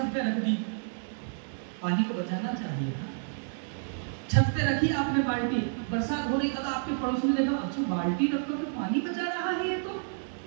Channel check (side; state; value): left; silent; 58 dB below the other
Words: पे रख दी। पानी को बचाना चाहिए था, छत पे रखी आपने बाल्टी, बरसात हो रही, कल आपके पड़ोसी ने देखा, अच्छा बाल्टी रखकर तो पानी बचा रहा है ये तो।